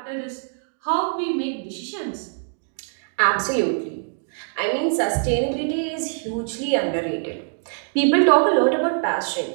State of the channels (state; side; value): silent; left; 63 dB below the other